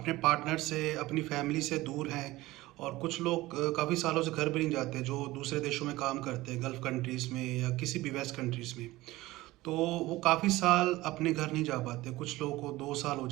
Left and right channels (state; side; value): quieter; left; 18.5 dB